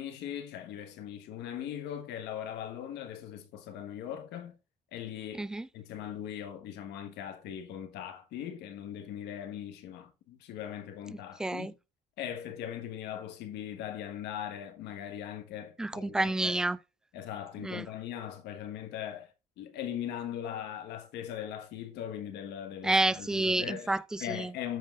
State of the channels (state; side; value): normal; both; correlation 0.63